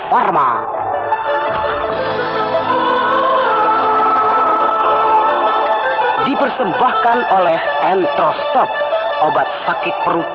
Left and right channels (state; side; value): identical; both; correlation 1.00